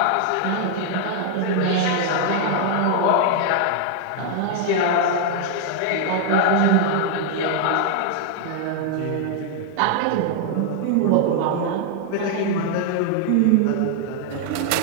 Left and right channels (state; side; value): different; both; correlation 0.00